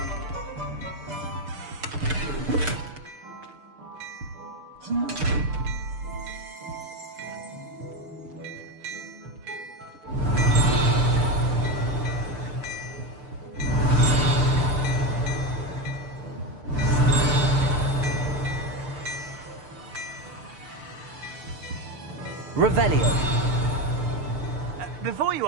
Revelio. Before you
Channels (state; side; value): late; left; 6.7 ms